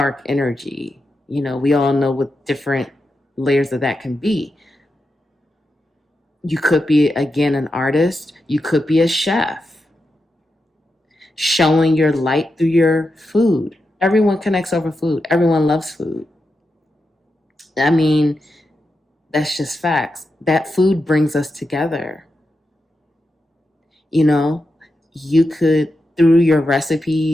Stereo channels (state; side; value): normal; both; correlation 0.88